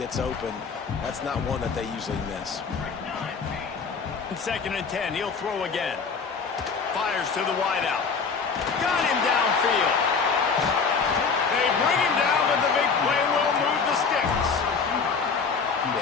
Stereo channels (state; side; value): quieter; right; 5.3 dB